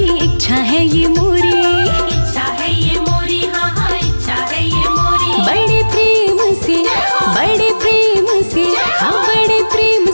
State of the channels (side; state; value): both; inverted; correlation -1.00